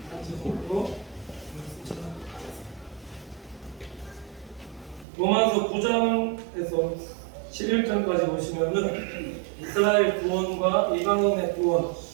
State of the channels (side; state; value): left; drops out; at 5.1 s